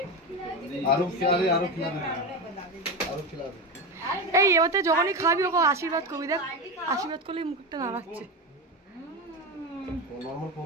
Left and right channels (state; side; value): normal; both; correlation 0.18